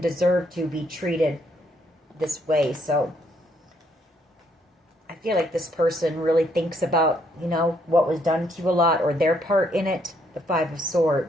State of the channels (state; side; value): normal; both; correlation 0.71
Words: deserve to be treated this way. So I feel like this person really thinks about, you know, what was done to you a lot, or their part in it. the Five of